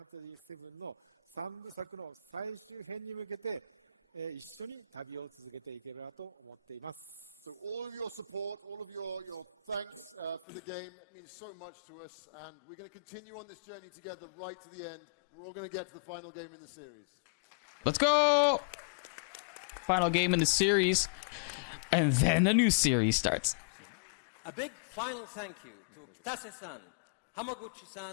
ンタジー7の3部作の最終編に向けて、一緒に旅を続けていければと思っています。So all of your support, all of your thanks for the game means so much to us, and we're going to continue on this journey together right to the end. We're all going to get to the final game in the series. Let's go! Final game in the series, and then a new series starts. A big final thank you to Kitase-san,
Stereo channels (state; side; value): drops out; right; at 10.5 s